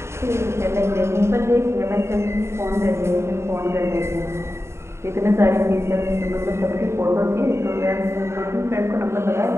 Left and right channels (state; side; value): late; left; 0.13 ms